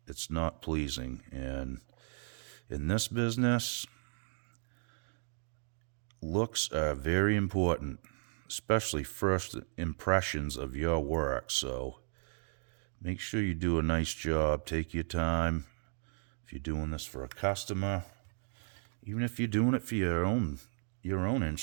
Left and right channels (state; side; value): silent; left; 54 dB below the other